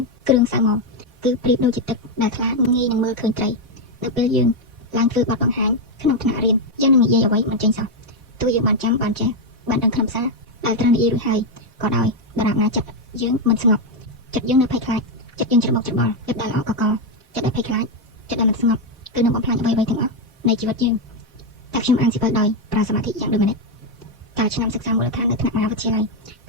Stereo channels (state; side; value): normal; both; correlation 0.04